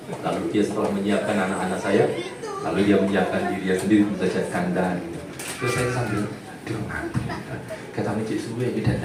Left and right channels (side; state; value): both; identical; correlation 1.00